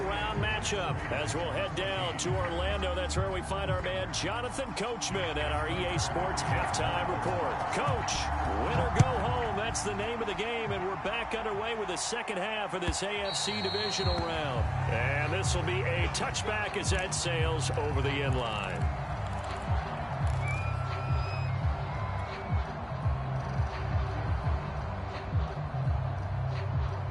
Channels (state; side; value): identical; both; correlation 1.00